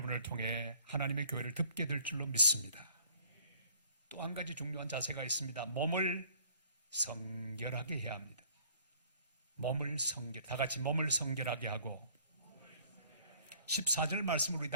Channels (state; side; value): inverted; both; correlation -0.56